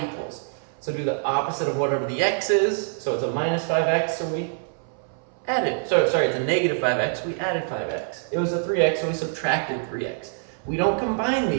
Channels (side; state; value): left; silent; 61 dB below the other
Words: equals. So do the opposite of whatever the x is. So it's a minus 5x, so we added. Sorry, it's a negative 5x, we added 5x. It was a 3x, so we subtracted 3x. We don't combine